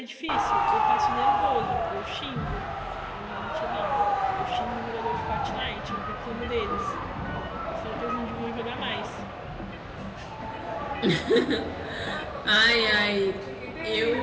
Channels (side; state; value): both; identical; correlation 1.00